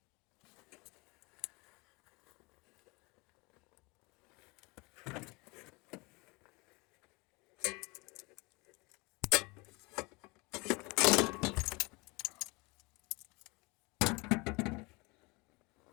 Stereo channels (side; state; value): right; quieter; 26.4 dB